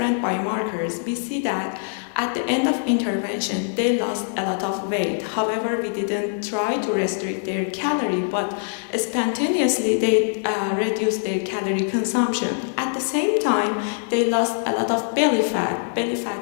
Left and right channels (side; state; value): right; silent; digital silence